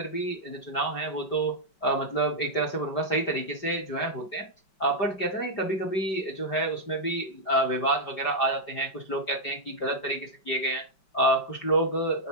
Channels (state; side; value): late; right; 5.2 ms